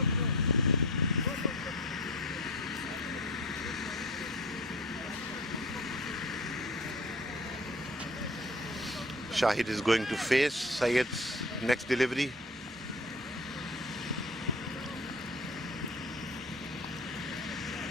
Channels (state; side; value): normal; both; correlation 0.39